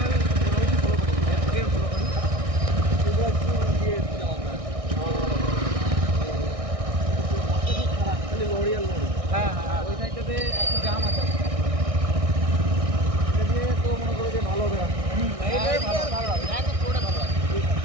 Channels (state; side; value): late; left; 1.6 ms